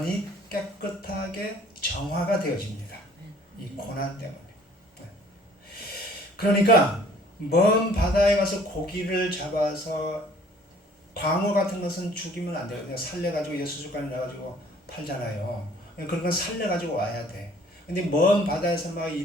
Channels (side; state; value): both; normal; correlation 0.55